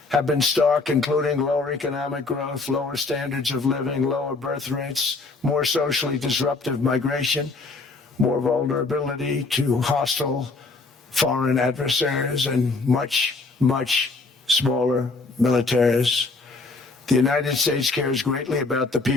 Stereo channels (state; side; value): quieter; right; 3.7 dB